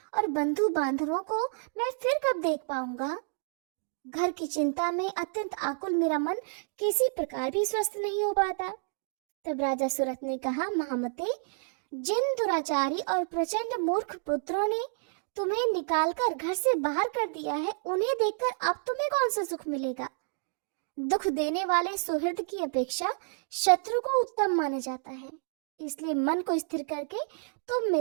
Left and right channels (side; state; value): left; silent; digital silence